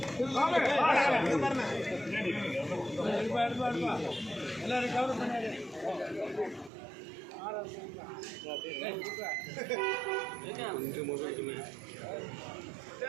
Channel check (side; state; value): left; drops out; at 6.7 s